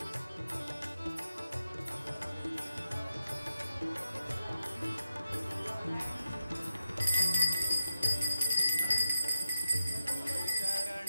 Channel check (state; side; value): inverted; both; correlation -0.89